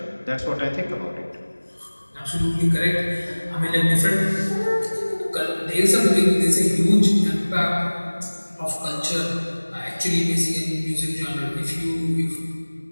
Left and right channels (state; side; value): inverted; both; correlation -1.00